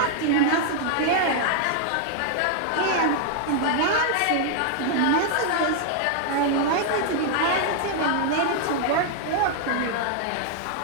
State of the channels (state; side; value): different; both; correlation 0.00